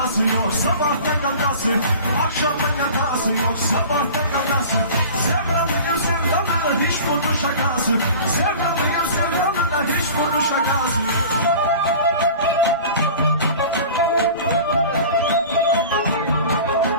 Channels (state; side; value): inverted; both; correlation -0.40